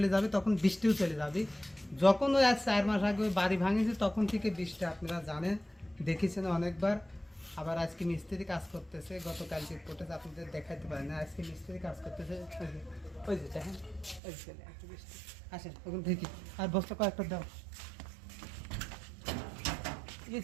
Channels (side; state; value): left; drops out; at 14.2 s